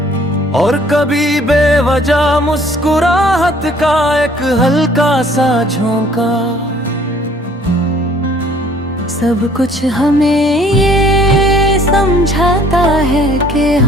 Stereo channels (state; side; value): normal; both; correlation 0.58